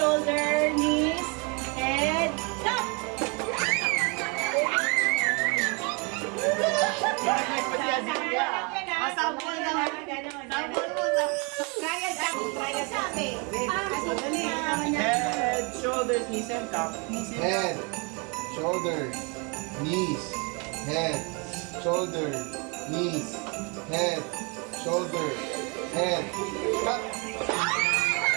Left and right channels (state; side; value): quieter; left; 32.2 dB